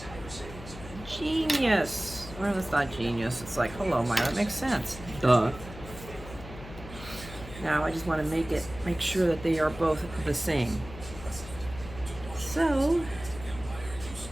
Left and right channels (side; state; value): left; noise; hum, 14 dB below the sound